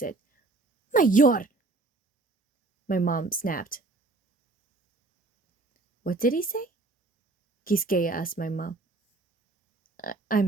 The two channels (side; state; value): left; quieter; 3.3 dB